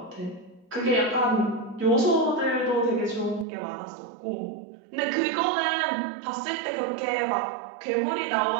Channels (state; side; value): drops out; left; at 3.5 s